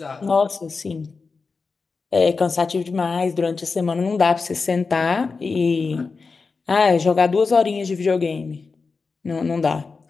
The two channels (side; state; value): right; quieter; 4.5 dB